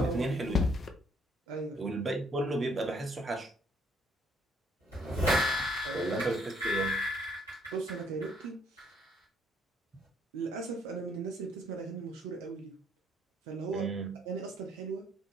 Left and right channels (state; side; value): normal; both; correlation 0.67